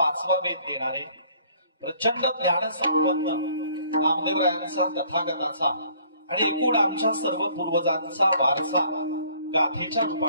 वेद देणारे प्रचंड ज्ञान संपन्न नामदेवरायांचा तथागताचा आणि एकूण आमच्या सर्व पूर्वजांचा वारसा गाथेच्या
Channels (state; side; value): inverted; both; correlation -0.59